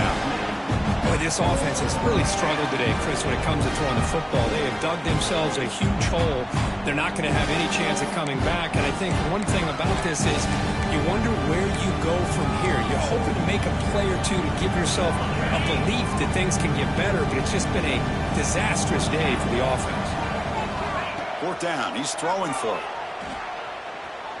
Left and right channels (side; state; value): both; identical; correlation 1.00